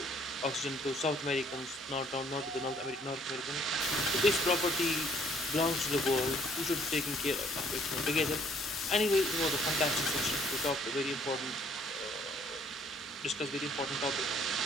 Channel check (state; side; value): normal; both; correlation 0.62